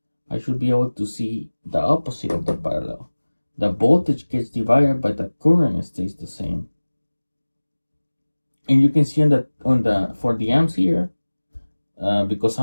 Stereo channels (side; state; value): both; inverted; correlation -1.00